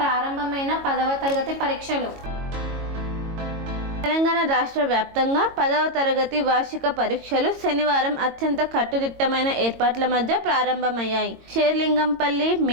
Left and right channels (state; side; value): late; left; 22 ms